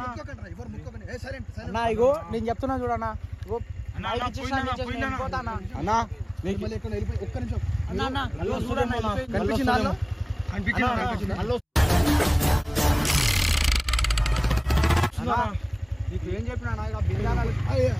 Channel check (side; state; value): both; identical; correlation 1.00